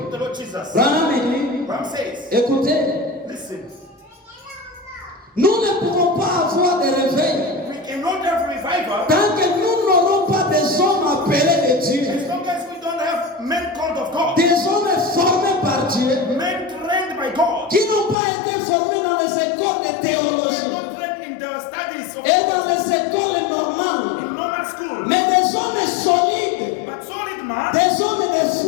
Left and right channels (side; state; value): right; drops out; at 18.2 s